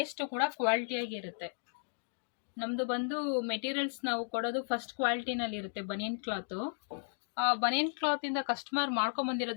ಕೂಡ ಕ್ವಾಲಿಟಿಯಾಗಿ ಇರುತ್ತೆ. ನಮ್ಮದು ಬಂದು ಮೆಟೀರಿಯಲ್ಸ್ ನಾವು ಕೊಡೋದು ಫಸ್ಟ್ ಕ್ವಾಲಿಟಿನಲ್ಲಿ ಇರುತ್ತೆ. ಬನಿಯನ್ ಕ್ಲಾತು, ಆ ಬನಿಯನ್ ಕ್ಲಾತಿಂದ ಕಸ್ಟಮರ್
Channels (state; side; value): silent; right; digital silence